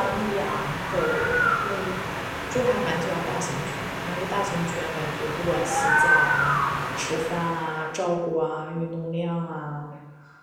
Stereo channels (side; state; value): both; identical; correlation 1.00